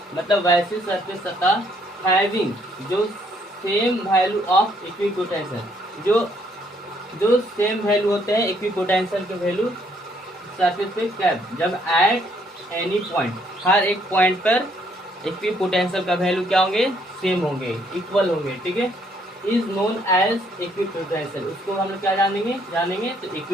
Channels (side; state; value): both; normal; correlation 0.68